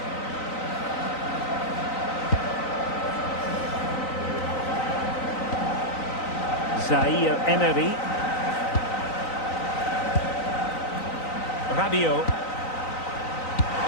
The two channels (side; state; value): right; late; 3.9 ms